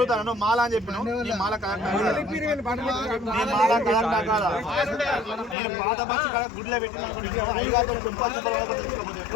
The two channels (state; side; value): drops out; right; at 5.6 s